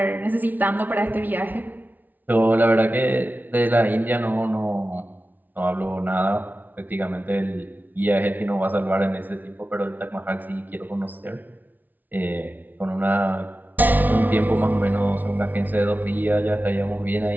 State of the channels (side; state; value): left; late; 0.082 ms